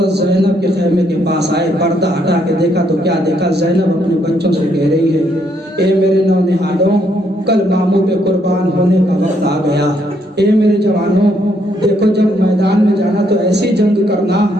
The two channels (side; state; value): both; normal; correlation 0.73